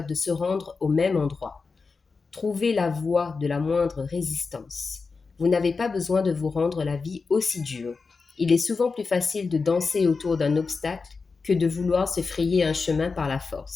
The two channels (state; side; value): quieter; right; 4.5 dB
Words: de se rendre au même endroit. Trouvez la voie de la moindre résistance. Vous n'avez pas besoin de vous rendre la vie aussi dure. Il est souvent plus facile de danser autour d'un obstacle que de vouloir se frayer un chemin par la